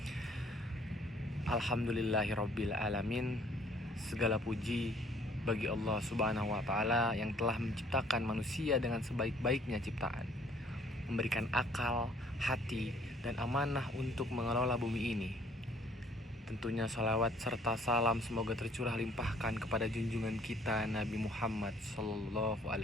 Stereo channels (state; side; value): normal; both; correlation 0.60